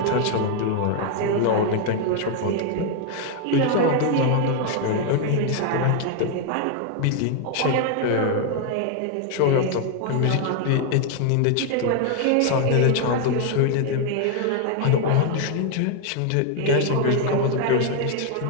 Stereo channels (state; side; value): different; both; correlation 0.00